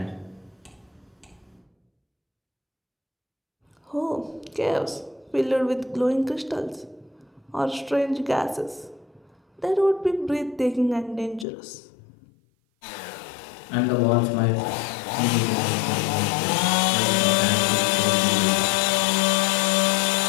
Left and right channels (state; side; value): drops out; right; at 11.5 s